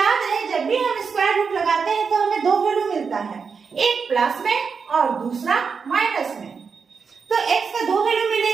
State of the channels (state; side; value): quieter; left; 5.6 dB